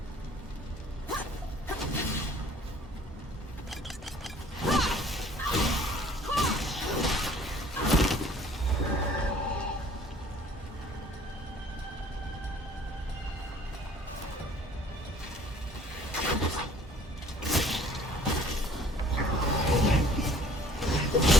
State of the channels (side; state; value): both; normal; correlation 0.55